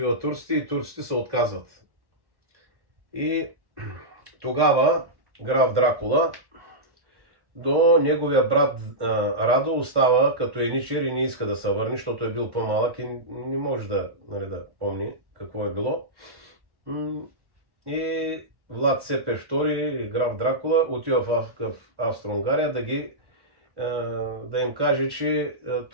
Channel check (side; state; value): left; late; 1.1 ms